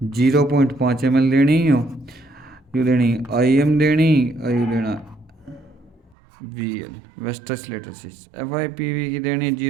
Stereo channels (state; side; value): drops out; left; at 6.2 s